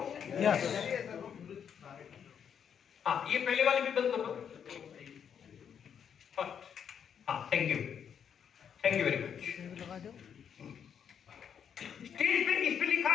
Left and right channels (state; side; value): quieter; right; 7.9 dB